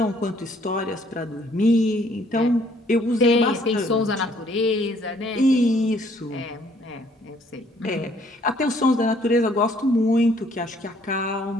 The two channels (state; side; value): normal; both; correlation 0.63